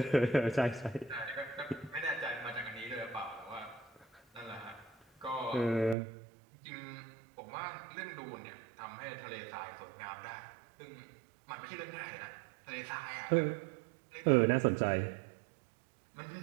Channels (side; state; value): left; drops out; at 6.0 s